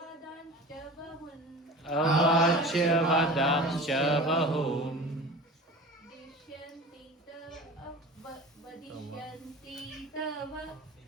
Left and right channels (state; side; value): normal; both; correlation 0.37